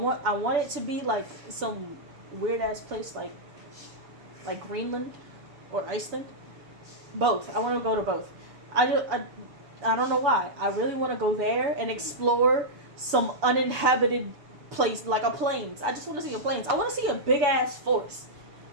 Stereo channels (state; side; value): late; left; 7.1 ms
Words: it to be some weird ass place like Greenland or Iceland. Both. I want to go to both. I don't know why. I really want to go there and explore some uninhabited place like a plains. I just want to see a plains. I want to see a big ass forest.